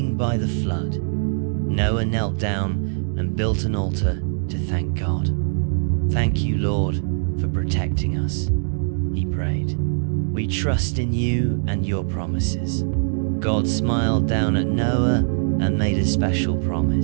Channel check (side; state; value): left; silent; digital silence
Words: by the flood. Noah knelt down and built an altar to thank God. "Thank you, Lord, for protecting us," he prayed. "We trust in you and your promises." God smiled down at Noah and made a special